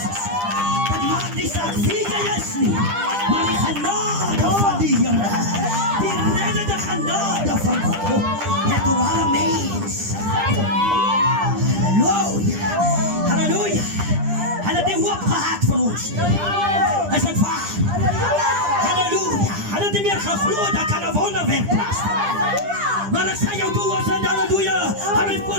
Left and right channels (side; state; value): left; late; 9.9 ms